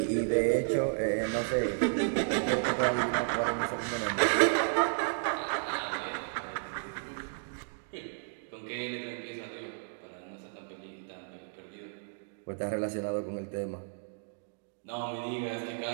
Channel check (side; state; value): left; silent; digital silence